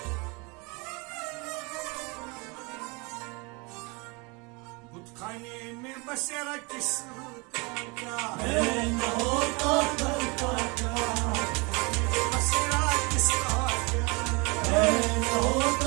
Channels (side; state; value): left; quieter; 28.7 dB